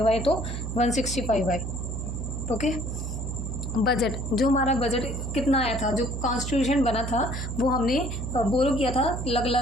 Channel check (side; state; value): right; noise; hum, 4 dB below the sound